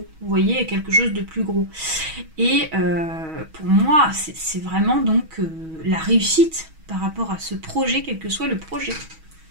vous voyez, à quelque chose de plus gros. Et pour moi, c'est vraiment donc la réussite par rapport à ce projet, quel que soit le projet.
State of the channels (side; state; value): left; late; 6.3 ms